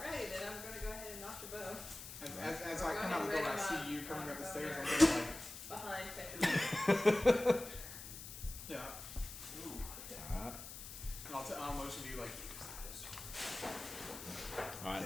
then I'm gonna go ahead and knock your bow. As We're I come going out the door, I ready see you up. coming up the Go stairs. there. I'm gonna like, Behind Petra. yeah. Alright. And I'll motion to you like.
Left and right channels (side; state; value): left; noise; hiss, 11 dB below the sound